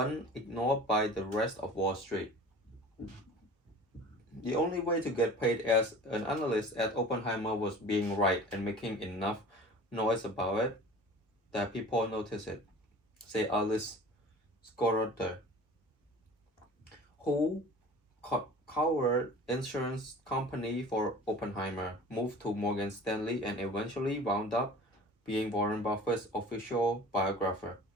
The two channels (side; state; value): both; normal; correlation 0.42